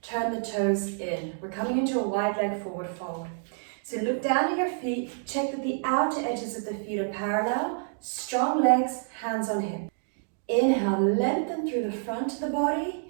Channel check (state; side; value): silent; left; digital silence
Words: turn the toes in. We're coming into a wide leg forward fold. So look down at your feet, check that the outer edges of the feet are parallel, strong legs, hands on hip. Inhale, lengthen through the front of the body.